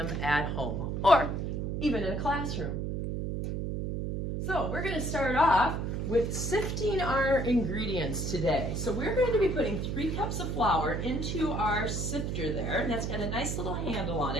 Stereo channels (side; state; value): right; noise; hum, 2 dB below the sound